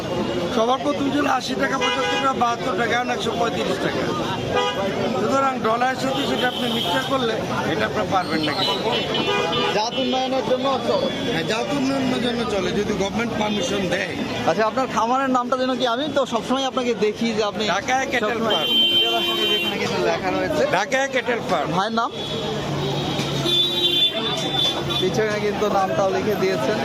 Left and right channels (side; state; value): both; identical; correlation 1.00